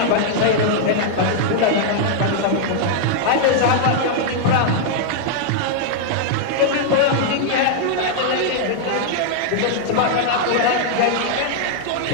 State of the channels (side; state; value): both; different; correlation -0.01